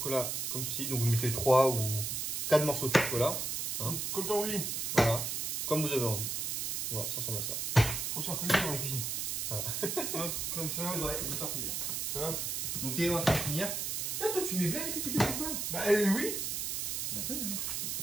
comme ceci, donc vous mettez 3 ou 4 morceaux de chocolat. Hein. Comme t'as envie. Voilà, comme vous avez envie. Voilà, ça ressemble à ça. Faut se faire plaisir dans la cuisine. Voilà. Hop, comme ça. C'est vrai, ça faire plaisir. Hop. Donc t'es en train de finir. Tiens, toi tu mets bien les pépites de chocolat. Bah oui. Bah toi,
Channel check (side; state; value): right; noise; hiss, 1 dB below the sound